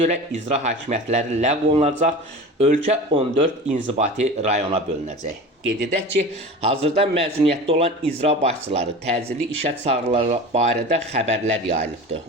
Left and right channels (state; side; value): normal; both; correlation 0.34